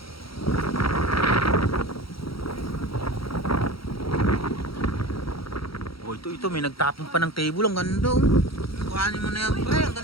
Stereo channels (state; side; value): late; right; 0.75 ms